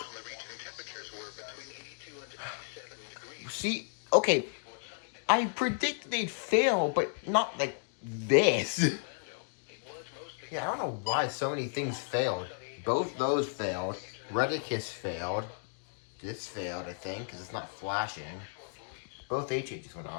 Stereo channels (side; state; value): right; silent; digital silence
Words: region, temperatures were between 82 and 97 degrees. See, okay, I predict they'd fail, but not like this. Yeah, I don't know why so many things failed. Both those failed. Redicus failed. This failed, I think, because it's not flashing. Both HHs went